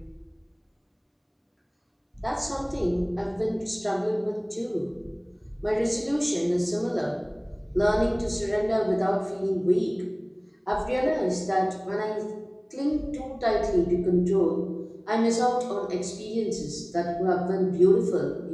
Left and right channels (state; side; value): identical; both; correlation 1.00